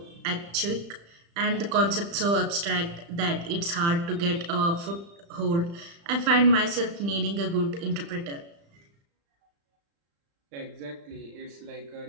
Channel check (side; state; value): left; late; 35 ms